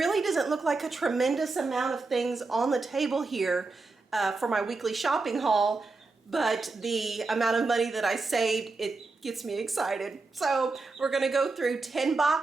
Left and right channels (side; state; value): left; quieter; 3.7 dB